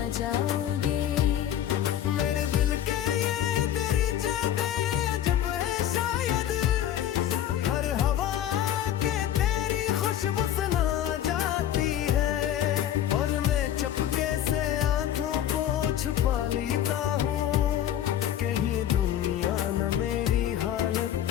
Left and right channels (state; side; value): quieter; right; 11.0 dB